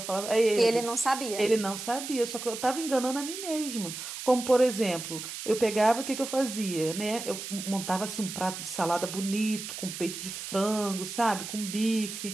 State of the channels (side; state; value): right; noise; hiss, 8 dB below the sound